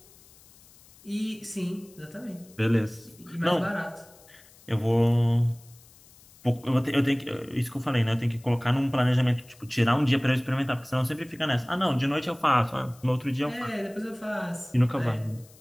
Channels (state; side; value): noise; left; hiss, 25 dB below the sound